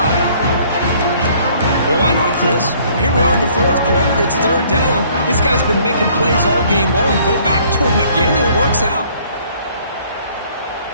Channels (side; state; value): both; inverted; correlation -0.59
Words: Well, why not, Chris? Here we are in the fourth quarter. It's third down. This guy's been making plays all game long. Go back to him again, and it works out.